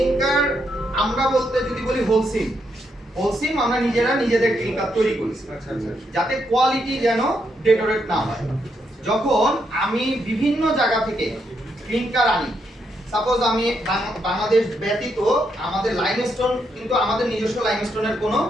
আমরা বলতে যদি বলি হোলসিম আমরা নিজেদের ক্লিনকার তৈরি করি। আচ্ছা আচ্ছা। যাতে কোয়ালিটি যেন ডেটোরেট না হয়। যখন আমি বিভিন্ন জায়গা থেকে ক্লিনকার আনি, সাপোজ আমি বাংলাদেশ ব্যতীত আমাদের লাইমস্টোন, কিন্তু আমাদের নিজস্ব লাইমস্টোনের কোনো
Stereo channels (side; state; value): both; normal; correlation 0.78